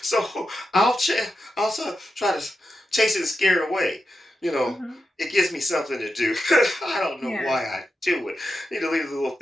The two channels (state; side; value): normal; both; correlation 0.89